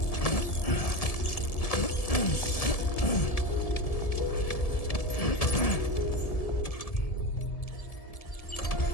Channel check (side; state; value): right; late; 1.7 ms